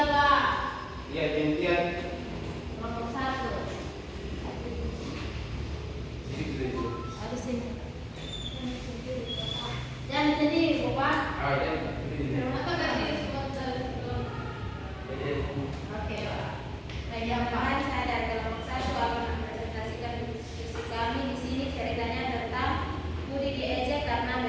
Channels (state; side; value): identical; both; correlation 1.00